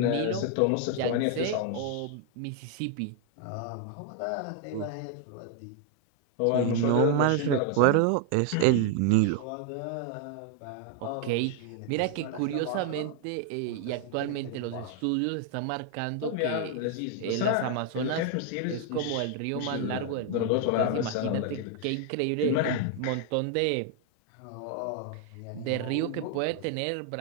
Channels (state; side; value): different; both; correlation 0.00